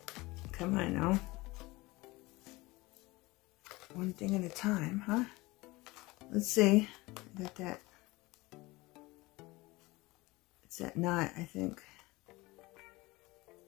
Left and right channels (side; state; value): right; quieter; 21.7 dB